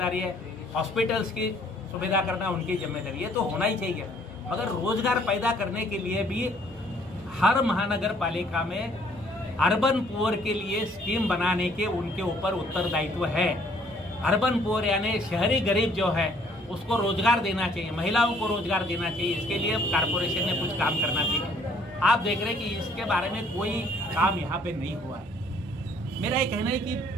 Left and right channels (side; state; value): right; noise; hum, 24 dB below the sound